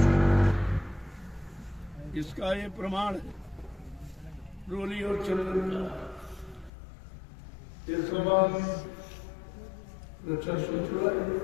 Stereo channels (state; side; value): drops out; right; at 6.7 s